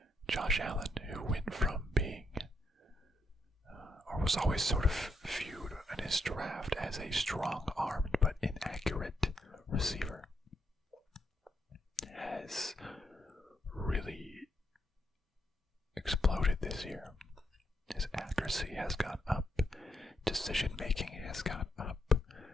Josh Allen, who went from being, or was always sort of viewed in his draft as a strong-armed but inaccurate receiver, has really exploded this year. His accuracy has gone up. Decision making has gone up.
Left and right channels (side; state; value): both; normal; correlation 0.79